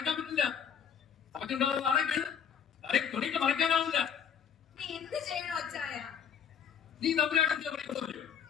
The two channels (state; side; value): quieter; right; 7.8 dB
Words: പറ്റില്ല. നമുക്കുണ്ടാവുന്ന അടയ്ക്ക് തലയ്ക്ക് തുണിക്ക് മറക്കാനാവില്ല. നീ എന്ത് ചെയ്യണോ അച്ചായ? നീ തമ്പുരാട്ടിന്റെ പഠിക്കുന്നു.